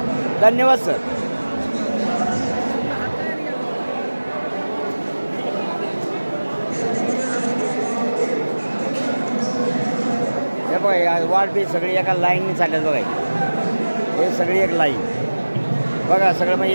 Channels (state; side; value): inverted; both; correlation -1.00